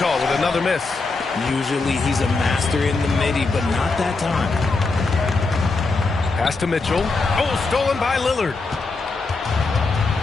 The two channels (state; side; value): quieter; right; 3.8 dB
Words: with another miss. Usually he's a master in the midi, but not that time. Pass to Mitchell. Oh, stolen by Lillard.